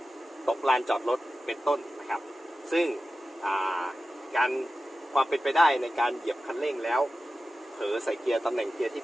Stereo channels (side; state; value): both; normal; correlation 0.94